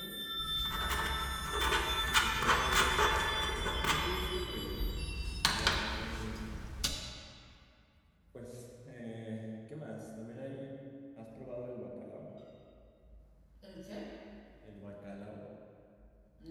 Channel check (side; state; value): both; identical; correlation 1.00